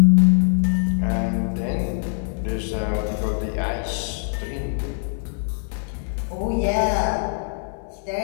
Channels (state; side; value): silent; right; 64 dB below the other